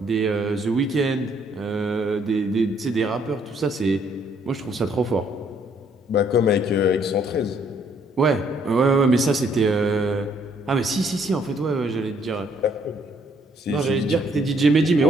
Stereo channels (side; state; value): both; normal; correlation 0.67